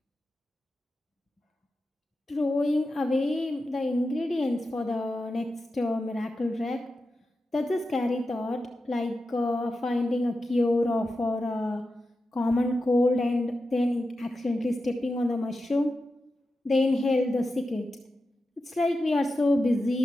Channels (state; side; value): normal; both; correlation 0.91